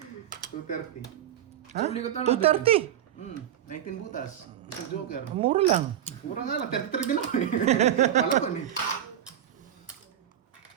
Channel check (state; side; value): quieter; left; 10.7 dB